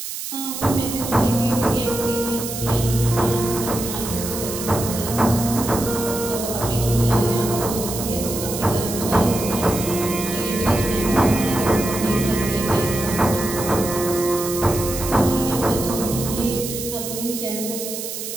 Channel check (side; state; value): right; noise; hiss, 7 dB below the sound